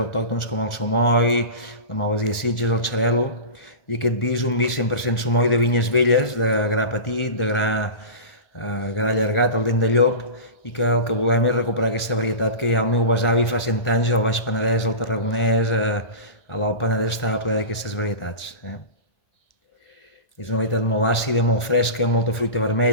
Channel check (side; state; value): right; late; 1.4 ms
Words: autòctones com el sumoi, la malvasia sitges, el xarel·lo. I aquest vi és un vi 100% sumoi de vinyes velles, de gra petit, de gra allargat, el dent de llop, i que el que volem és recuperar aquesta varietat que ja el meu besavi fa 100 anys al Baix Penedès, al Tarragonès, a l'Alt Penedès estava ple d'aquestes varietats. És una varietat molt àcida, molt fresca, molta fruita